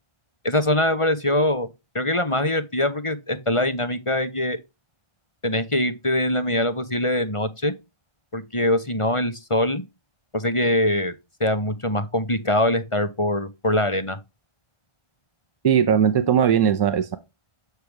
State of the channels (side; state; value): right; late; 1.5 ms